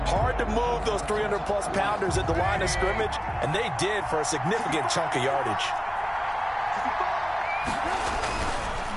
Hard to move those 300-plus pounders at the line of scrimmage, and they did for a significant chunk of yardage.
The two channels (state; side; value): identical; both; correlation 1.00